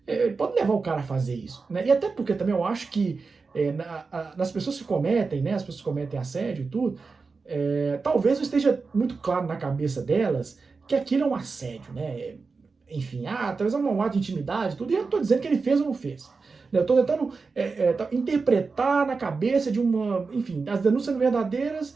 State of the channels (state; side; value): quieter; left; 4.5 dB